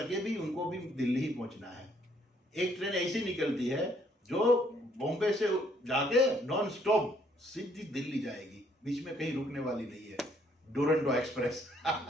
भी उनको भी दिल्ली ही पहुंचना है। एक ट्रेन ऐसी निकलती है जो बॉम्बे से जाके नॉन स्टॉप सीधी दिल्ली जाएगी, बीच में कहीं रुकने वाली नहीं है। डुरंटो एक्सप्रेस।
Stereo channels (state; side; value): normal; both; correlation 0.67